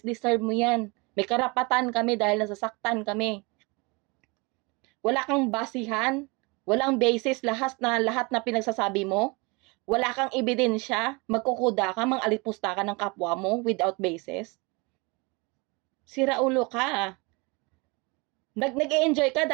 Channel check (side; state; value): left; quieter; 27.9 dB